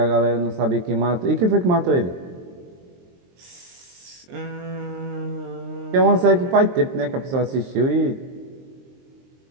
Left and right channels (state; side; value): late; left; 23 ms